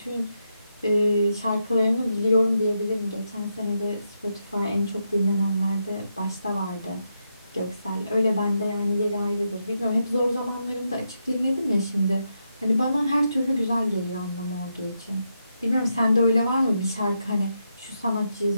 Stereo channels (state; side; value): inverted; both; correlation -0.83